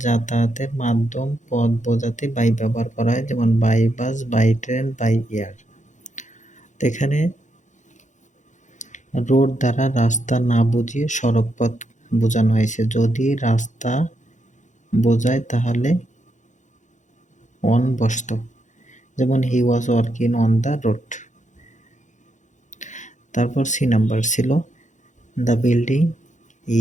যাতায়াতের মাধ্যম পথ বোঝাতে বাই ব্যবহার করা হয়, যেমন by bus, by train, by air. এখানে রোড দ্বারা রাস্তা না বুঝিয়ে সড়ক পথ বোঝানো হয়েছে। যদি রাস্তা বোঝায় তাহলে অন বসত, যেমন he was working on the road. তারপর সি নাম্বার ছিল the building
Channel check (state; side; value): late; right; 0.35 ms